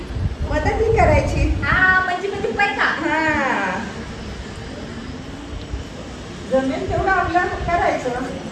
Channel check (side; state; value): both; identical; correlation 1.00